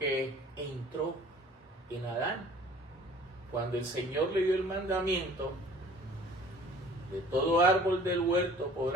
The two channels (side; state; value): both; normal; correlation 0.49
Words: entró en Adán. Cuando el Señor le dio el mandamiento, de todo árbol del huerto